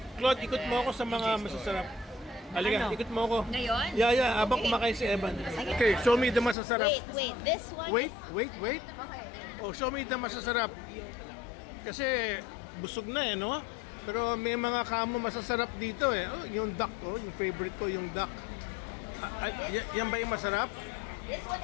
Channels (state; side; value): drops out; right; at 6.6 s